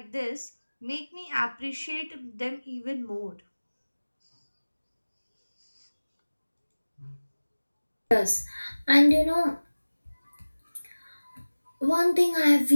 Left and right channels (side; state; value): both; inverted; correlation -1.00